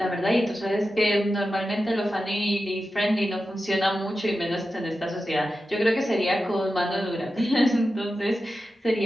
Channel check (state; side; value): normal; both; correlation 0.92